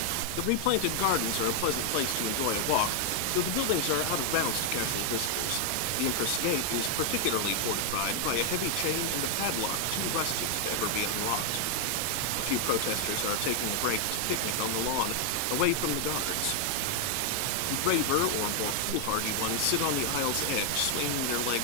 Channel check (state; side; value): different; both; correlation 0.00